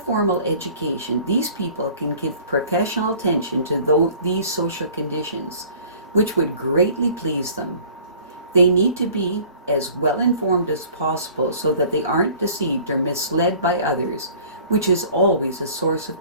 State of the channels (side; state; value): both; inverted; correlation -0.50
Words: education, these people can give professional attention to these social conditions, which would greatly please them. They need to be as well informed as possible so that they aren't deceived or misled by others, which is always a source